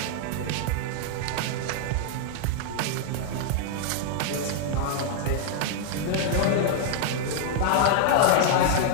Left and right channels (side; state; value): both; different; correlation 0.00